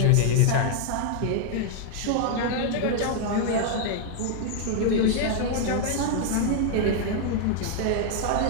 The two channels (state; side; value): different; both; correlation -0.01